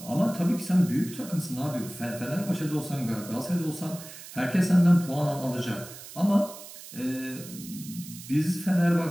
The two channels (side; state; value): right; noise; hiss, 15 dB below the sound